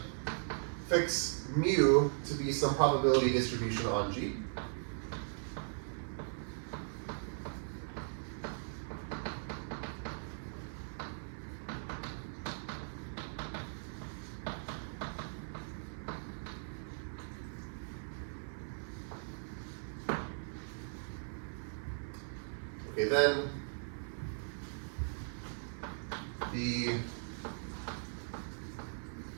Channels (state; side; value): silent; left; 52 dB below the other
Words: fix mu to be some probability distribution on G. Okay, then the